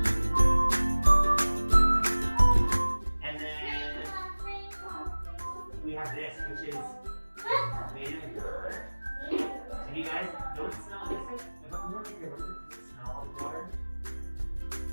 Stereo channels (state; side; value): inverted; both; correlation -1.00